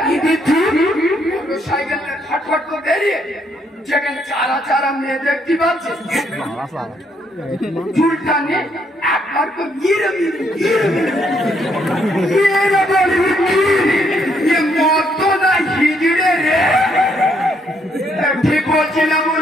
সাইকেল ফটফট করে বেরিয়ে যেখানে চারা চারা মেয়ে দেখতে পাচ্ছে চুলটা নিয়ে একবার তো গিরে মত না হিজড়ে রে ঠিক বলছি না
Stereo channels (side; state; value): both; normal; correlation 0.72